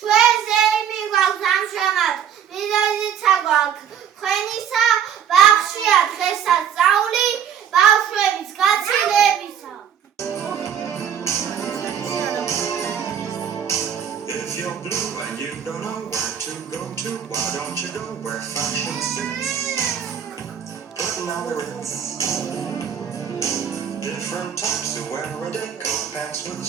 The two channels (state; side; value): quieter; left; 8.6 dB